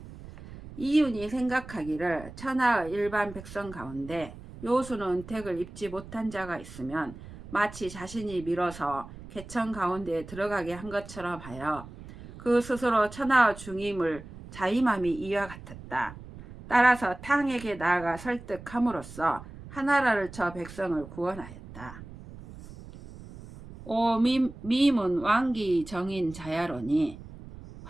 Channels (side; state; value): right; noise; rumble, 15 dB below the sound